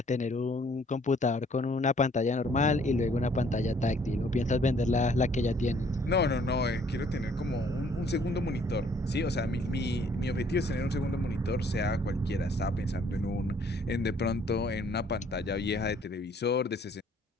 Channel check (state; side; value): normal; both; correlation 0.61